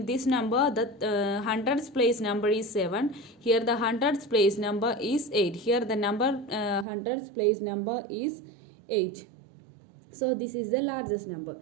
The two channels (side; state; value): left; drops out; at 6.9 s